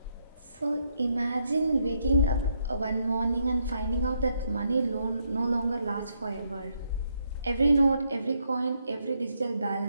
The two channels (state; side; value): inverted; both; correlation -0.77